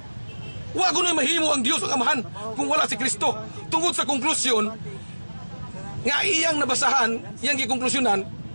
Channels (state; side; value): inverted; both; correlation -1.00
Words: Wa kuno'y mahimo ang Dios ang amahan kung wala si Kristo. Tungod sa konklusyon nga iyang nabasahan, iyang gikonklusyonan